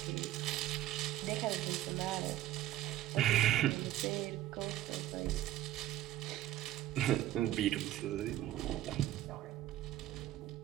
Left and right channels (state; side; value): quieter; left; 13.7 dB